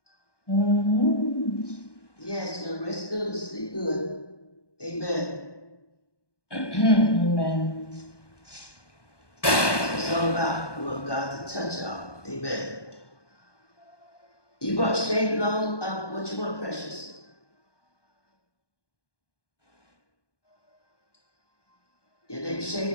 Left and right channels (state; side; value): late; right; 1.2 ms